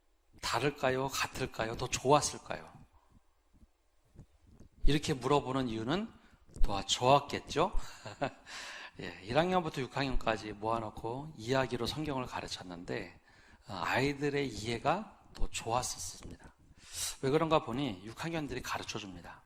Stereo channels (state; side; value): identical; both; correlation 1.00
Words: 다를까요? 같을까요? 더 좋았을까요? 이렇게 물어보는 이유는 더 좋았겠죠? 1학년부터 6학년까지 모아놓고 이야기로 성경을 가르쳤는데 아이들의 이해가 더 좋았었습니다. 왜 그런가 보니 6학년들이 가르쳐줍니다.